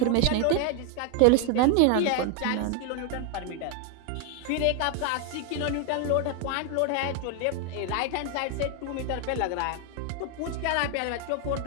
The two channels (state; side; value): different; both; correlation 0.00